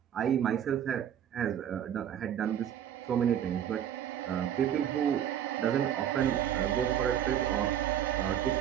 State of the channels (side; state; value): left; quieter; 10.0 dB